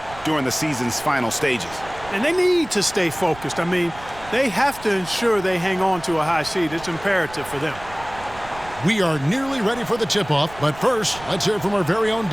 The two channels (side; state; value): right; noise; rumble, 18 dB below the sound